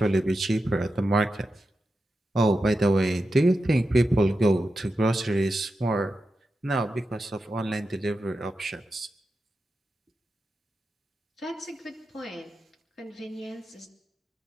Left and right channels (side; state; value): both; normal; correlation 0.90